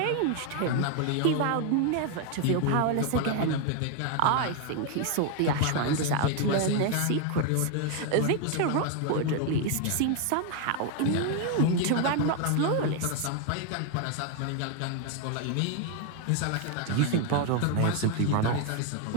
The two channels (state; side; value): different; both; correlation 0.01